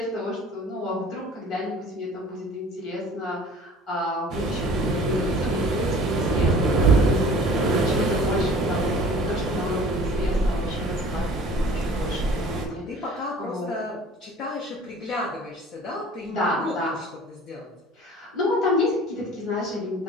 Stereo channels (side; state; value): both; normal; correlation 0.47